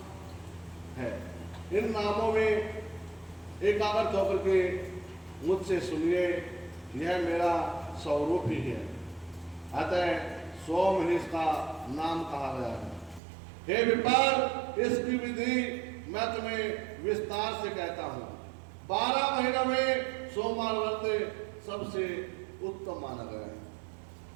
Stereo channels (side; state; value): left; drops out; at 13.2 s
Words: है। इन नामों में एकाग्र होकर के मुझसे सुनिए, यह मेरा स्वरूप ही है, अतः सोम ही इसका नाम कहा गया है। हे विपर, इसकी विधि मैं तुम्हें विस्तार से कहता हूँ। 12 महीनों में सोमवार व्रत सबसे उत्तम माना गया है।